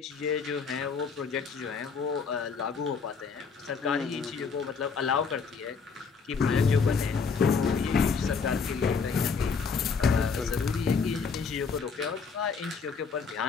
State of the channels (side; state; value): right; quieter; 5.4 dB